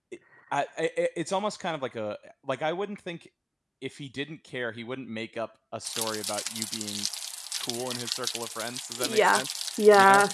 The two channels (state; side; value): identical; both; correlation 1.00